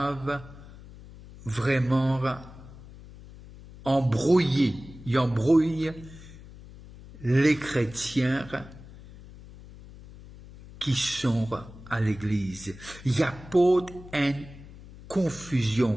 vraiment embrouiller les chrétiens qui sont à l'église. Il y a pas une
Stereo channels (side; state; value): left; noise; hum, 18 dB below the sound